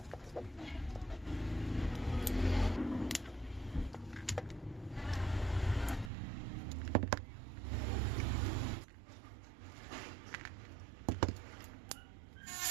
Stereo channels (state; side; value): drops out; left; at 6.1 s